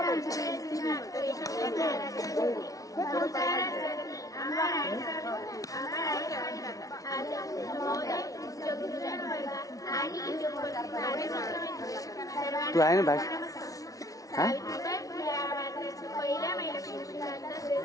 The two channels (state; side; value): late; right; 0.17 ms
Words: तू आहे ना भाषा हा